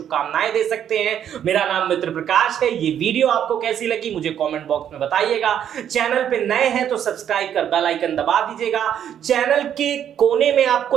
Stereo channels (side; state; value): left; quieter; 9.6 dB